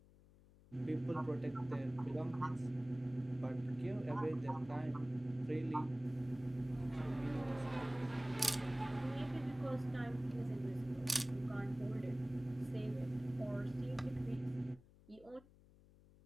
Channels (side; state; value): left; noise; hum, 24 dB below the sound